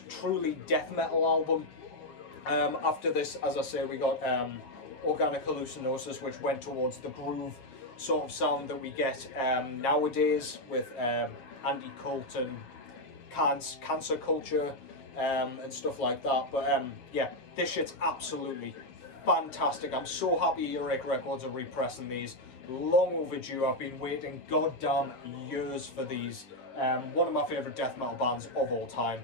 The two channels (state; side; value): late; right; 7.9 ms